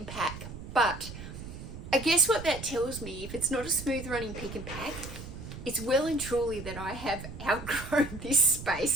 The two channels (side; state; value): right; noise; rumble, 11 dB below the sound